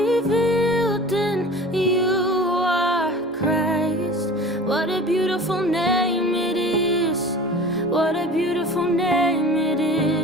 in you are Christ. What a beautiful name it is, what a beautiful name it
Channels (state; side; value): normal; both; correlation 0.40